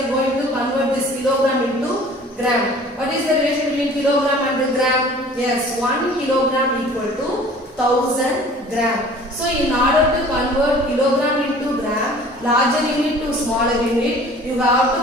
going to convert this kilogram into gram. What is the relation between kilogram and the gram? Yes, 1 kilogram equal to 1000 gram. So in order to convert kilogram into gram, larger unit to smaller unit, you have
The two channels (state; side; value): normal; both; correlation 0.48